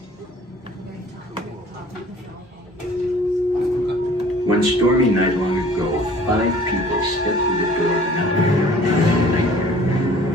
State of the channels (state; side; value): normal; both; correlation 0.51